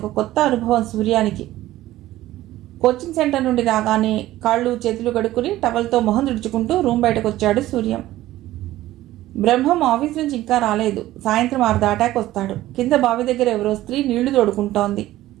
కొత్త అనుభవం సూర్యానికి. కోచింగ్ సెంటర్ నుండి రాగానే కాళ్ళు చేతులు కడుక్కుని టవల్తో మొహం తుడుచుకుంటూ రూమ్ బయటకు వచ్చాడు సూర్యం. బ్రహ్మం ఆఫీస్ నుంచి ఇంకా రాలేదు. సాయంత్రం 6 దాటాక వస్తాడు. కింద బావి దగ్గర ఎవరో స్త్రీ నీళ్లు తోడుకుంటోంది.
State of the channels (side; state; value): left; quieter; 15.3 dB